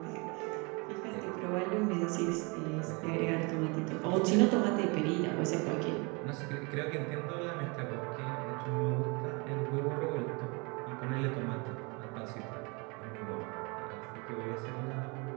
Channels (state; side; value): quieter; left; 29.8 dB